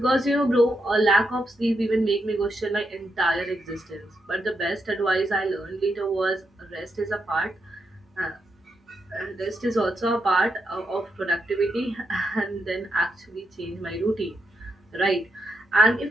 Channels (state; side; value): normal; both; correlation 0.82